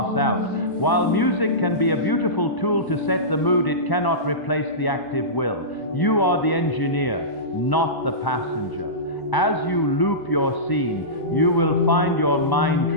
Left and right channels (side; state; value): right; late; 1.0 ms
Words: out. While music can be a beautiful tool to set the mood, it cannot replace the active will. You are the engineer, not the passenger. As you loop your scene, you will find your mind